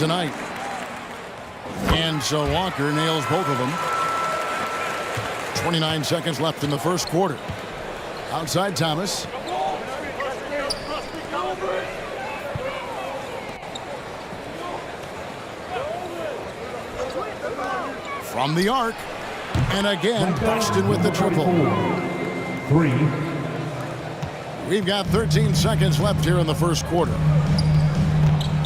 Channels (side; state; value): both; identical; correlation 1.00